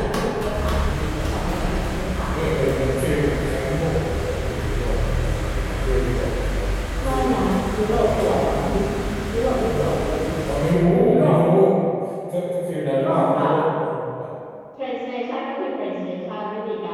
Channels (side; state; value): both; identical; correlation 1.00